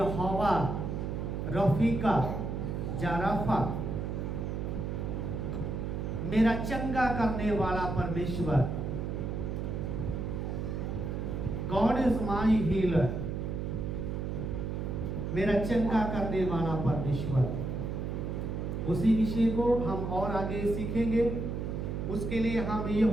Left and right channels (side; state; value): right; noise; hum, 3 dB below the sound